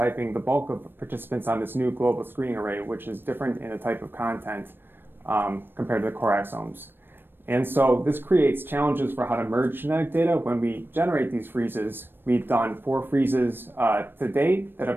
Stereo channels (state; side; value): late; left; 0.098 ms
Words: the bulk of participants on this new global screening array, which is different in the type of content compared to the core exomes. And so this creates challenges for how to merge genetic data when we generate these freezes. We've done 4 freezes to date that